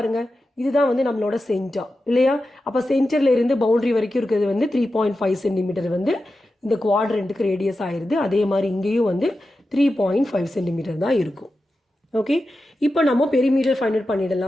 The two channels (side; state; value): both; normal; correlation 0.91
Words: இதுதான் வந்து நம்மளோட சென்டர் இல்லையா? அப்போ சென்டரில் இருந்து பவுண்ட்ரி வரைக்கும் இருக்கிறது வந்து 3.5 சென்டிமீட்டர் வந்து இந்த குவாட்ரண்ட்டுக்கு ரேடியஸ் ஆயிடுது. அதே மாதிரி இங்கேயும் வந்து 3.5 சென்டிமீட்டர் தான் இருக்கும். ஓகே, இப்போ நம்ம பெரிமீட்டர் ஃபைண்ட் அவுட்